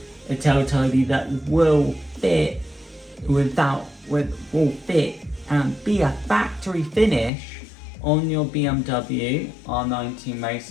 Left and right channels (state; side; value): drops out; right; at 7.3 s